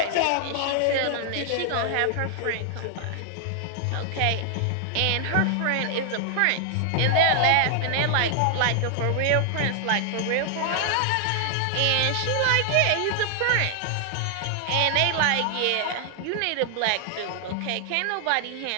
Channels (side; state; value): both; different; correlation 0.00